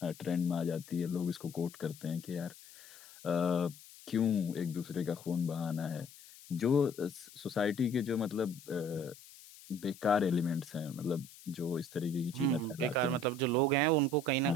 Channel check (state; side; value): noise; left; hiss, 20 dB below the sound